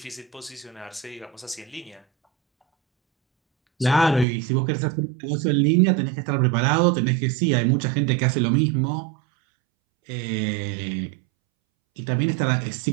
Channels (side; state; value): left; drops out; at 4.2 s